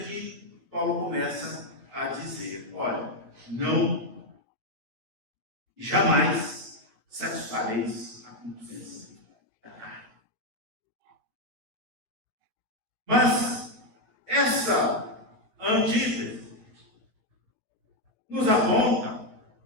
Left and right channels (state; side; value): late; left; 8.8 ms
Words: Paulo começa a dizer: olha, não e jamais satisfareis a concupiscência da carne. Mas essa antítese nos aponta